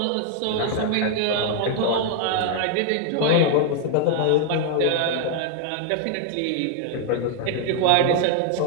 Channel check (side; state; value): both; different; correlation 0.00